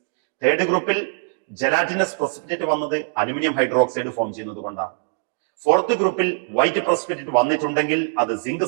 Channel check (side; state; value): left; silent; digital silence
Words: തേർഡ് ഗ്രൂപ്പിൽ ജലാറ്റിനസ് പ്രസിപ്പിറ്റേറ്റ് വന്നത് അലുമിനിയം ഹൈഡ്രോക്സൈഡ് ഫോം ചെയ്യുന്നത് കൊണ്ടാണ്. ഫോർത്ത് ഗ്രൂപ്പിൽ വൈറ്റ് പ്രസിപ്പിറ്റേറ്റ് വന്നിട്ടുണ്ടെങ്കിൽ അത് സിങ്ക്